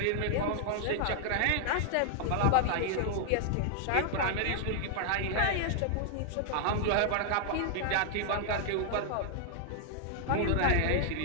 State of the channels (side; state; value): both; different; correlation -0.01